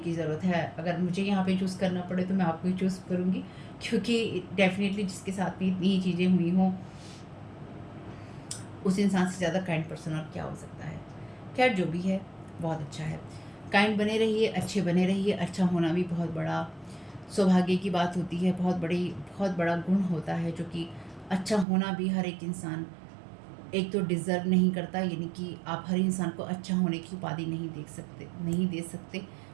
ज़रूरत है। अगर मुझे यहाँ पे चूज़ करना पड़े तो मैं आपको ही चूज़ करूँगी, क्योंकि डेफ़िनेटली जिसके साथ में इतनी ही चीज़ें हुई हों, उस इंसान से ज़्यादा काइंड पर्सन और क्या हो सकता है। खैर जो भी है बहुत अच्छा है। काइंड बने रहिए, अच्छे बने रहिए। अच्छा होना भी बहुत बड़ा सौभाग्य की बात होती है, बहुत बड़ा गुण होता है, जो कि अच्छा होना भी हर एक इंसान एक तो डिज़र्व नहीं करता, यानी कि आप हर इंसान को अच्छा होने की उपाधि नहीं दे सकते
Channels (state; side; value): drops out; left; at 21.7 s